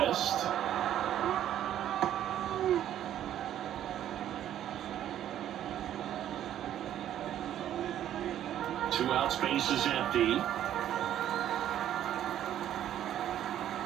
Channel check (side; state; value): left; quieter; 11.3 dB